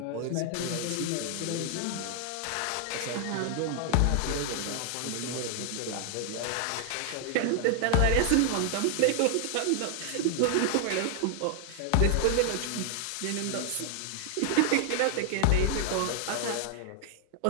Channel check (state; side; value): different; both; correlation 0.00